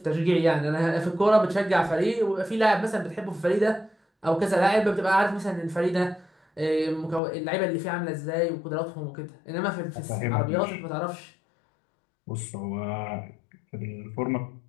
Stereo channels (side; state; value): right; drops out; at 7.2 s